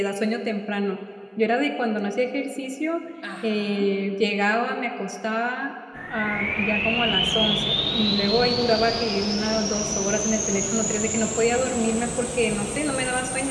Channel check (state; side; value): identical; both; correlation 1.00